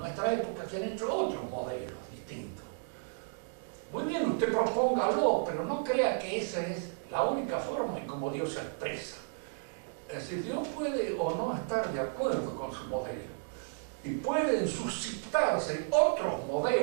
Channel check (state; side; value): silent; left; digital silence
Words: época que han hecho otros modelos distintos. Muy bien, usted propóngalo, pero no crea que esa es la única forma en cómo Dios se expresa. Es decir, Dios puede o no estar de acuerdo con su modelo y pueden suscitarse otros